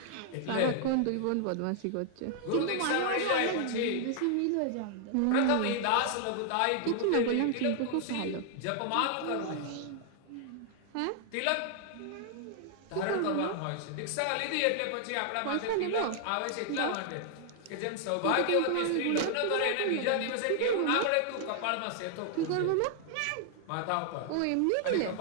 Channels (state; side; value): different; both; correlation -0.01